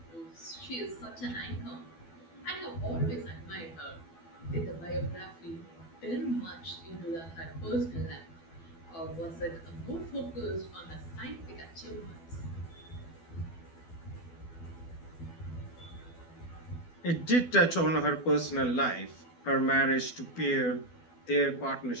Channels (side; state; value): right; late; 12 ms